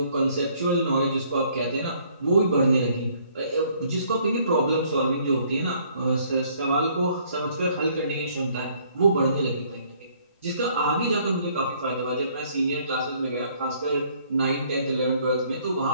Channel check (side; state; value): both; inverted; correlation -0.63